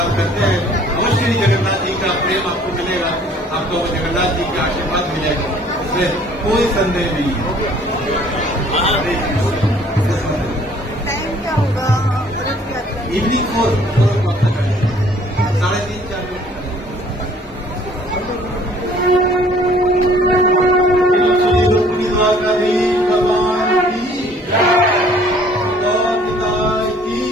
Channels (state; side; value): normal; both; correlation 0.56